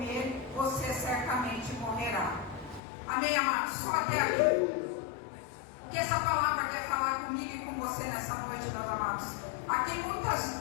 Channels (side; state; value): right; drops out; at 2.8 s